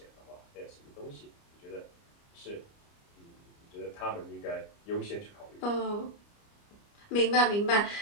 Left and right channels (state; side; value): late; right; 29 ms